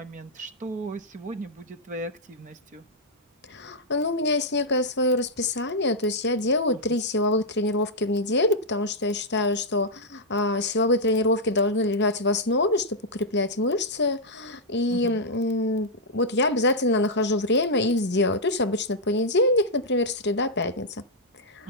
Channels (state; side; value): normal; both; correlation -0.06